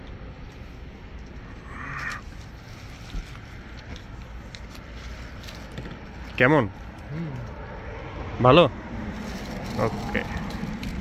কেমন? ভালো? ওকে।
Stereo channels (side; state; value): both; identical; correlation 1.00